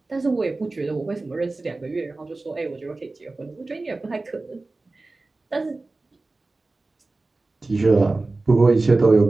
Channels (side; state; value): left; quieter; 3.3 dB